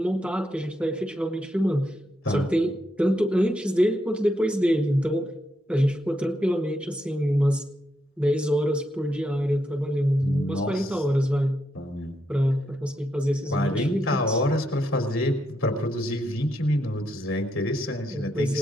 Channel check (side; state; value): both; normal; correlation 0.81